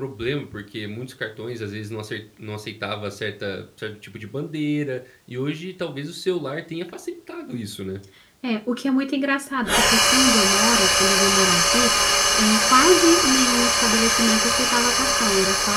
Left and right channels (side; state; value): both; identical; correlation 1.00